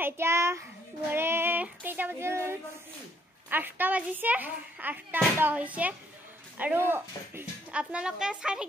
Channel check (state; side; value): normal; both; correlation 0.69